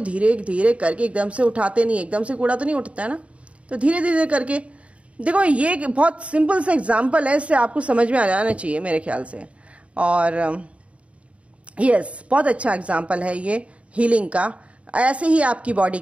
धीरे धीरे करके, एकदम से उठाते नहीं, एकदम से कूड़ा तो नहीं उठता है ना, तो धीरे धीरे करके। देखो ये बहुत सिंपल सा एग्जांपल है, इससे आपको समझ में आ जाना चाहिए मेरे ख्याल से। और यस, बहुत अच्छा एग्जांपल है ये हीलिंग का। ऐसे ही आपकी बॉडी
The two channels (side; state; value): left; late; 0.063 ms